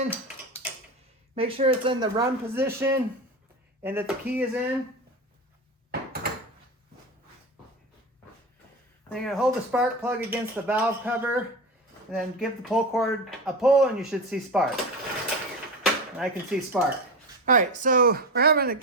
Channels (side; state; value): both; normal; correlation 0.24